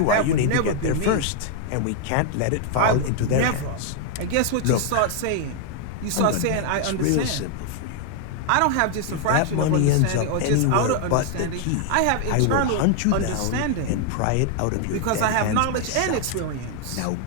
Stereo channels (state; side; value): different; both; correlation 0.00